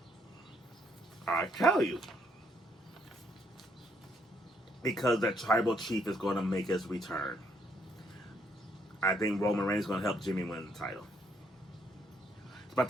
I'll tell you. Because the tribal chief is going to make his return. I think Roman Reigns is going to help Jimmy win the title.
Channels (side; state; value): both; normal; correlation 0.71